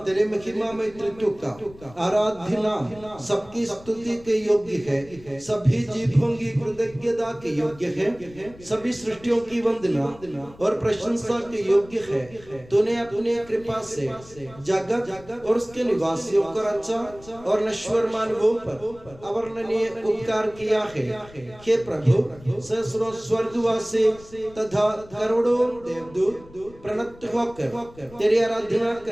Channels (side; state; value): left; noise; rumble, 22 dB below the sound